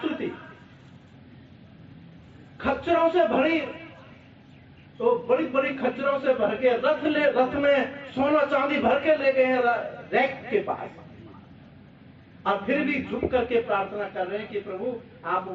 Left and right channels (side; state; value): both; identical; correlation 1.00